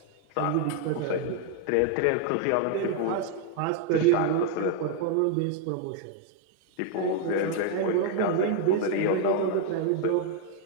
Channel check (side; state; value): both; different; correlation 0.00